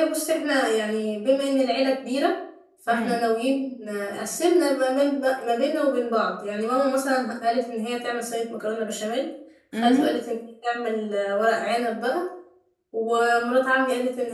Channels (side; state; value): both; identical; correlation 1.00